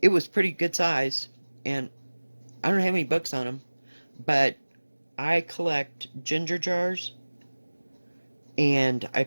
it was pretty good size. And I don't have any books on them. But I collect ginger jars. And I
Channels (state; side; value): inverted; both; correlation -1.00